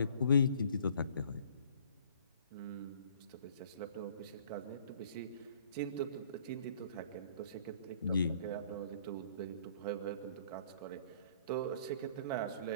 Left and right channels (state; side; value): inverted; both; correlation -0.56